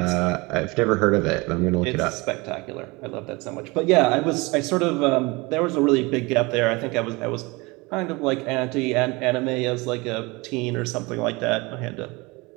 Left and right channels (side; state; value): left; quieter; 24.7 dB